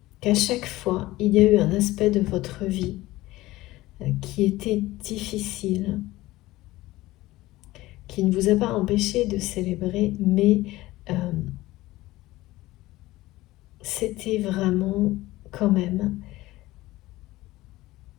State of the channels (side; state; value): right; quieter; 17.9 dB